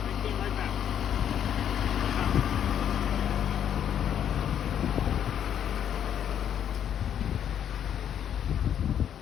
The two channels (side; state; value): right; quieter; 9.4 dB